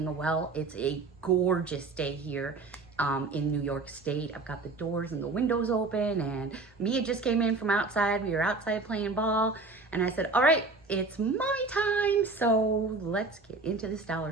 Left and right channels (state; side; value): quieter; left; 3.7 dB